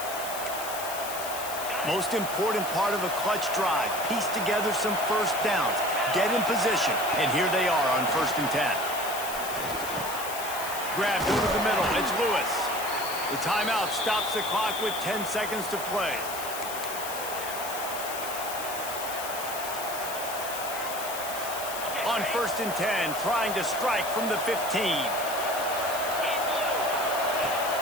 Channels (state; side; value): noise; left; hiss, 8 dB below the sound